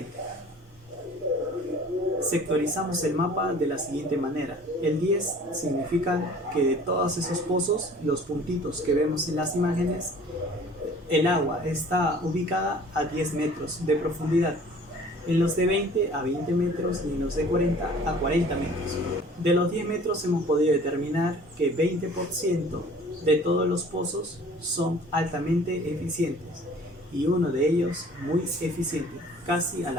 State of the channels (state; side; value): normal; both; correlation 0.49